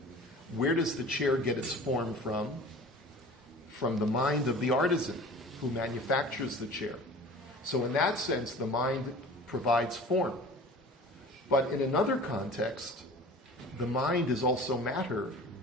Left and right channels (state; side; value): normal; both; correlation 0.41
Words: where does the chair get its form from? From the mind of the artisan who manufactures the chair. So in that sense, the mind provides form. But in another context, the mind is also matter